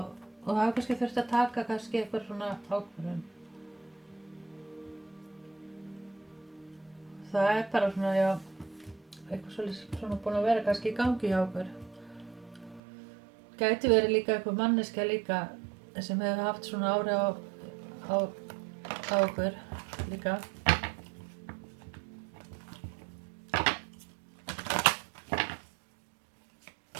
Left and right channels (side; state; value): left; drops out; at 12.8 s